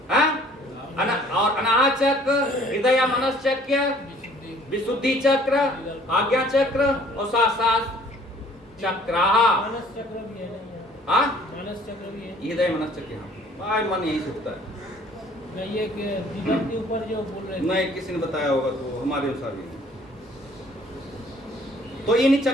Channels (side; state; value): both; normal; correlation 0.56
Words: और अनाहत चक्र, हृदय मनस चक्र, विशुद्धि चक्र, आज्ञा चक्र और सात चक्र। मानस चक्र भी है ना, मानस चक्र भी है, हृदय मनस चक्र। हाँ, मन यही से होता है। नहीं, ये दिमाग के ऊपर जो बोल रहे थे, नहीं, किसी ने बताया होगा तो हमारे अनुसार ही। तो इन